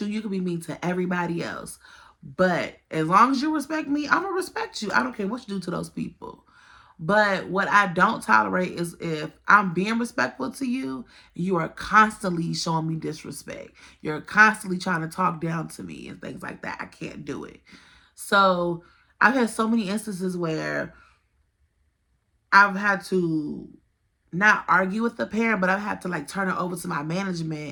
You can be mean to everybody else. But as long as you respect me, I'm going to respect you. I don't care what you do to those people. But what I don't tolerate is if I'm being respectful to you, you are constantly showing me disrespect. You're constantly trying to talk down to me and things like that. I can't do it. So I've had so many instances where I've had to not argue with the parent, but I've had to like turn it over to my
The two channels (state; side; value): identical; both; correlation 1.00